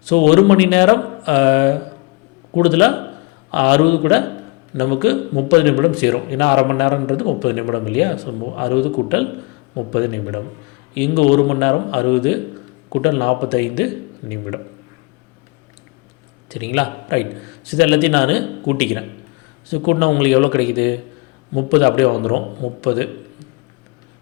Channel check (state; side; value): quieter; right; 26.7 dB